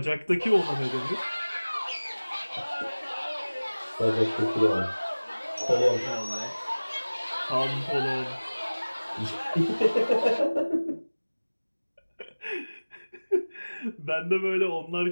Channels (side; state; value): both; inverted; correlation -1.00